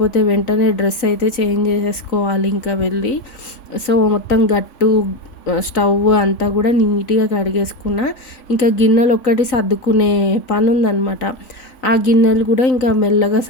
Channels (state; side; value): late; right; 3.9 ms